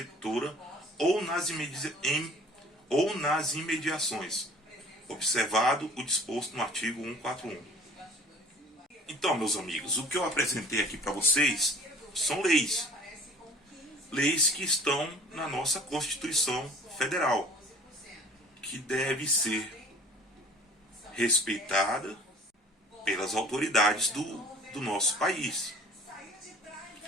ou nas imediações, observado o disposto no artigo 141. Então, meus amigos, o que eu apresentei aqui para vocês são leis. Leis que estão na nossa Constituição Federal, que deve ser respeitada pelas autoridades do nosso país.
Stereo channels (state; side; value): normal; both; correlation 0.48